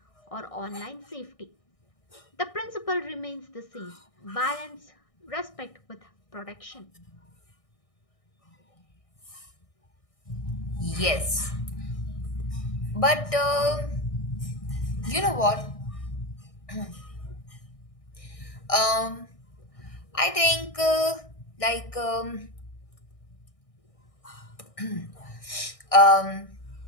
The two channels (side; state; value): right; late; 1.6 ms